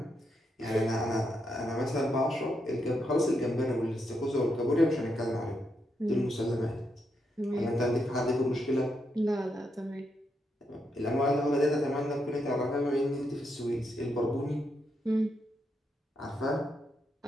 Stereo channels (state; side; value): normal; both; correlation 0.81